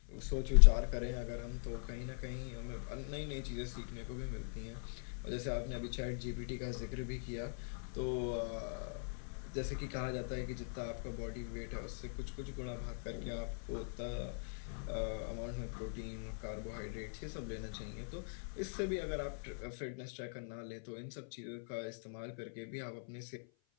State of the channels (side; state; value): right; silent; 50 dB below the other